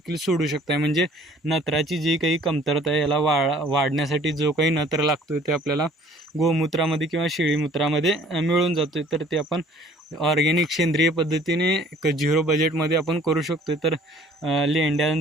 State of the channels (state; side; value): normal; both; correlation 0.54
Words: सोडू शकताय. म्हणजे नत्राची जी काही कमतरता आहे याला वाढण्यासाठी जो काही नत्र लागतो ते आपल्याला गोमूत्रामध्ये किंवा शेळीमूत्रामध्ये मिळून जातो. तर ते आपण ऑर्गॅनिक सेंद्रिय पद्धतीने 0 बजेटमध्ये आपण करू शकतो. तर